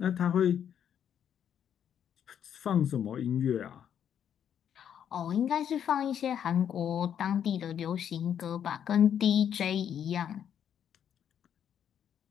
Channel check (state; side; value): quieter; right; 9.0 dB